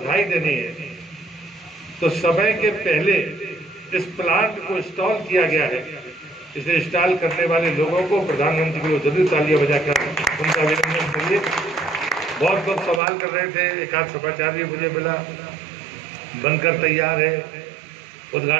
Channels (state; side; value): drops out; left; at 13.0 s